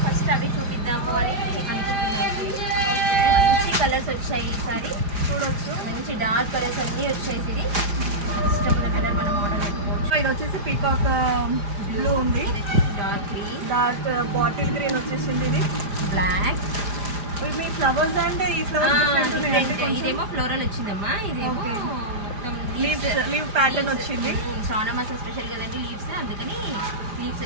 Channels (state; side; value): late; left; 5.0 ms